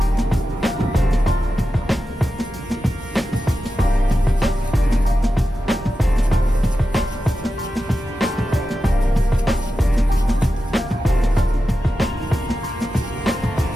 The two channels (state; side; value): normal; both; correlation 0.91